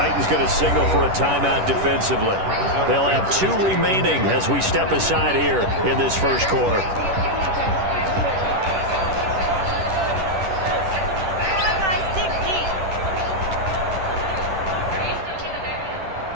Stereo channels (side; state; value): left; late; 10 ms